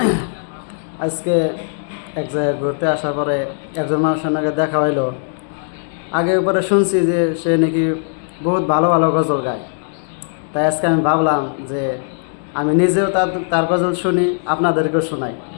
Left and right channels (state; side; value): silent; right; 67 dB below the other